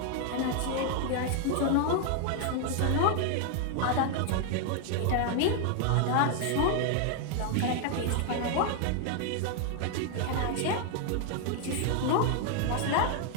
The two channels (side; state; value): both; different; correlation 0.00